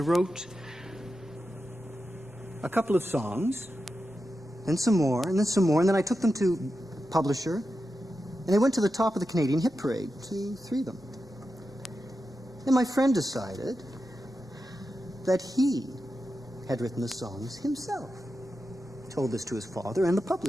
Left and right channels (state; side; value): normal; both; correlation 0.90